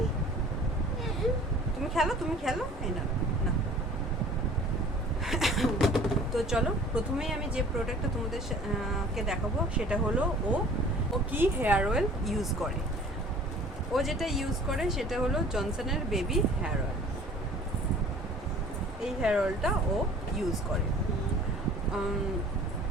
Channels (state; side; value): normal; both; correlation 0.48